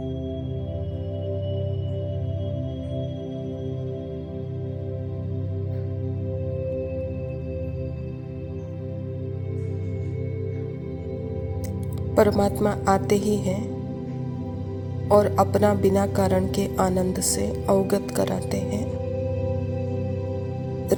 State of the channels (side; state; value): both; identical; correlation 1.00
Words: परमात्मा आते ही हैं और अपना बिना कारण के आनंद से अवगत कराते हैं,